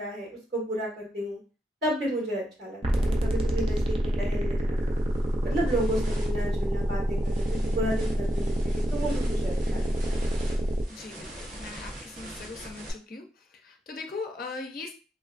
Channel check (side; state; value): both; normal; correlation 0.85